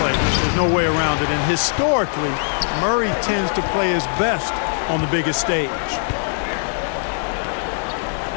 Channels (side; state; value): right; silent; digital silence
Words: There's no way around it. And historically, Murray tends to play his best on the biggest stage.